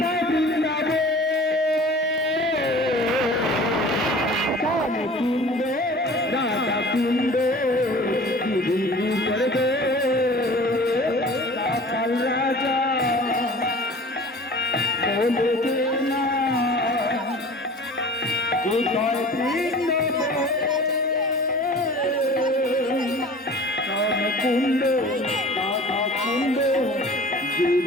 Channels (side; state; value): both; normal; correlation 0.43